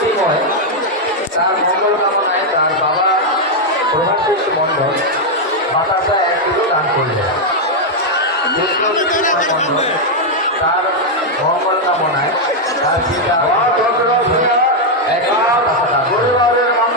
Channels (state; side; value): normal; both; correlation 0.00